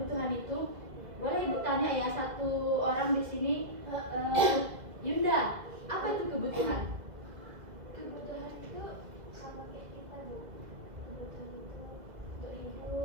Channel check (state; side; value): late; left; 2.0 ms